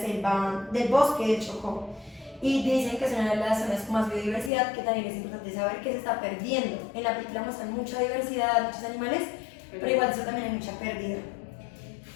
del bosque de Chocó. Y dicen que es una de las zonas con más biodiversidad, que también es importante saber que se está perdiendo. En la película muestran mucha diversidad, muchos animales, pero igual eso también hay mucha pérdida.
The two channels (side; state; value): right; drops out; at 4.5 s